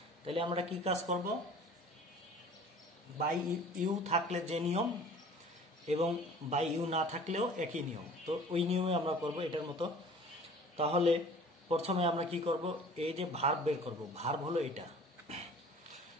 তাহলে আমরা কি কাজ করব, বাই ইউ থাকলে যে নিয়ম এবং বাই ইউ না থাকলেও একই নিয়ম, তো ওই নিয়মে আমরা করব এটার মতো। তাহলে প্রথমে আমরা কি করব, এই যে ভার্ব বের করব। ভার্ব হলো এটা,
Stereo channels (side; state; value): both; normal; correlation 0.47